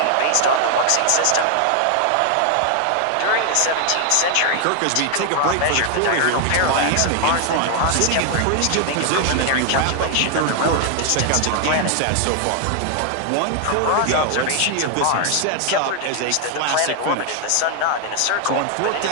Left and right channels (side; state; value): both; different; correlation 0.00